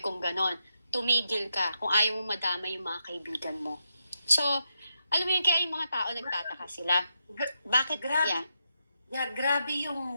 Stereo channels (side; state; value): both; inverted; correlation -0.83